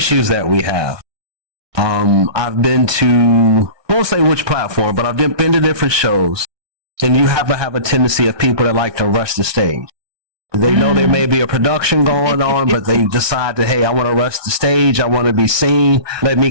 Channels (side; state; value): left; late; 1.2 ms